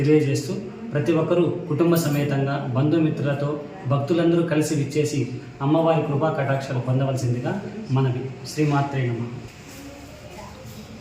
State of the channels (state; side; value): identical; both; correlation 1.00